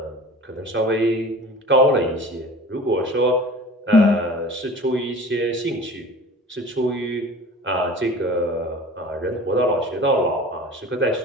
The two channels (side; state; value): both; normal; correlation 0.41